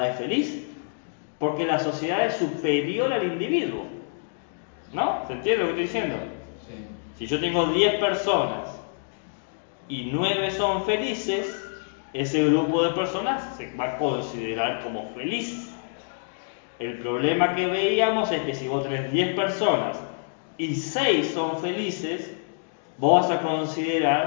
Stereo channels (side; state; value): right; silent; digital silence